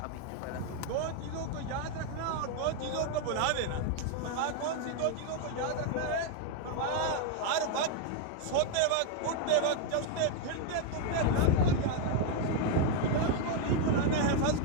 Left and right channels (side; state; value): both; different; correlation 0.01